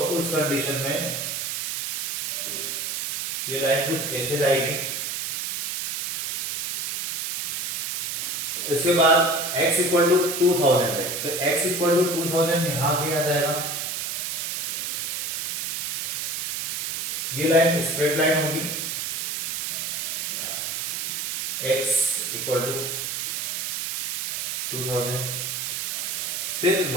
उस कंडीशन में ये लाइन कुछ ऐसे जाएगी। इसके बाद x इक्वल टू 2000 है, तो x इक्वल टू 2000 यहां भी आ जाएगा। ये लाइन स्ट्रेट लाइन होगी, x इक्वल टू 2000। फिर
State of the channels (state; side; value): noise; right; hiss, 2 dB below the sound